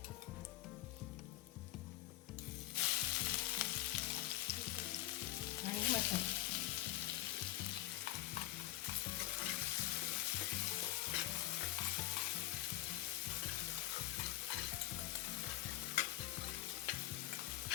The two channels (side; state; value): right; quieter; 15.1 dB